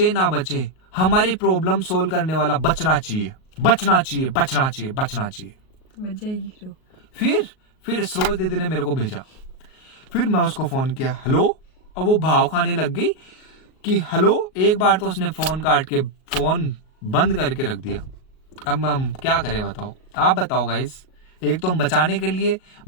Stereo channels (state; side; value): late; right; 38 ms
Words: ना बचे, हमारी प्रॉब्लम सोल्व करने वाला बचना चाहिए, बचना चाहिए, बचना चाहिए, बचना चाहिए। बच जाएगी रो। फिर सरोज दीदी ने मेरे को भेजा। फिर मैं उसको फोन किया, हेलो। और वो भाव खाने लग गई कि हेलो। एक बार तो उसने फोन काट के फोन बंद करके रख दिया। अब हम क्या करें बताओ, आप बताओ गाइस। एक तो हम बचाने के लिए